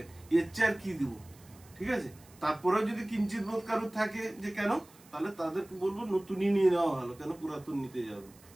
এর চেয়ে আর কি দিব, ঠিক আছে? তারপরেও যদি কিঞ্চিত বোধ কারোর থাকে যে কেন, তাহলে তাদেরকে বলবো নতুনই নিয়ে নেওয়া ভালো, কেন পুরাতন নিতে যাবে।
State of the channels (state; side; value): noise; right; hiss, 25 dB below the sound